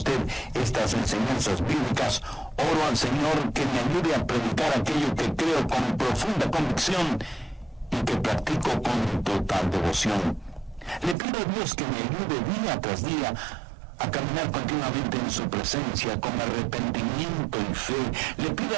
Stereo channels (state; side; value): drops out; left; at 11.2 s